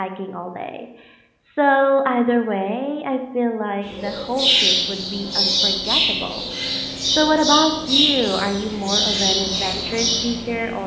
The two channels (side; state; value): both; identical; correlation 1.00